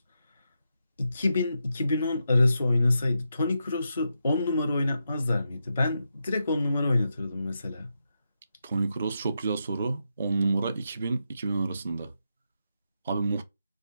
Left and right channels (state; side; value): inverted; both; correlation -0.85